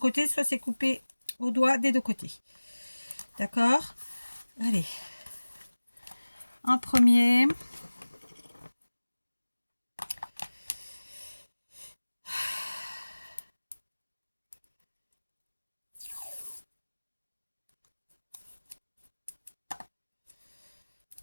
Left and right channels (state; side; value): inverted; both; correlation -1.00